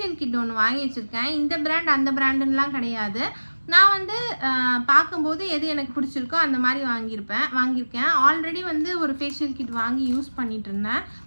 கிட் ஒன்று வாங்கி வச்சுருக்கேன். இந்த பிராண்ட் அந்த பிராண்டுன்னெலாம் கிடையாது. நான் வந்து பார்க்கும்போது எது எனக்கு பிடிச்சிருக்கோ அந்த மாதிரி வாங்கியிருக்கேன். ஆல்ரெடி வந்து ஒரு ஃபேஷியல் கிட் வாங்கி யூஸ் பண்ணிகிட்டு இருந்தேன்.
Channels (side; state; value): both; inverted; correlation -1.00